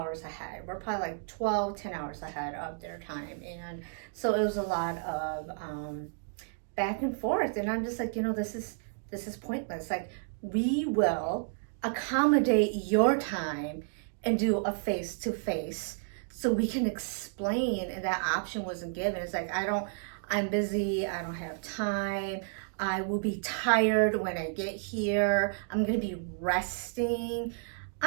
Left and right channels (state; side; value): silent; left; digital silence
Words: ahead. We're probably like 10 hours ahead of their time. And so it was a lot of back and forth. And I'm just like, you know, this is pointless. Like, we will accommodate your time and do a face-to-face so we can explain. And that option wasn't given. It's like, I'm busy. I don't have time. I will be tired when I get here. I'm going to be resting.